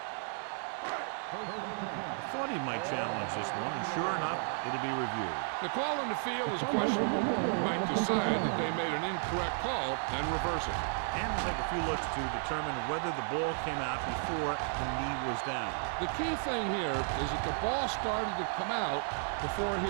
First and 10. I thought he might challenge this one, and sure enough, it'll be reviewed. The call on the field is questionable. He might decide that they made an incorrect call and reverse it. And we'll take a few looks to determine whether the ball came out before the knee was down. The key thing here is that the ball started to come out before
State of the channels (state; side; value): silent; left; 55 dB below the other